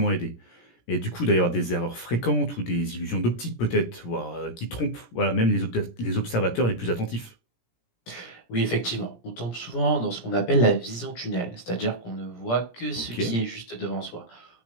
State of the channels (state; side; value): late; right; 17 ms